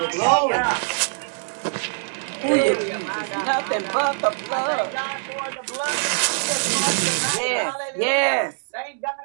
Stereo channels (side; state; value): left; silent; 63 dB below the other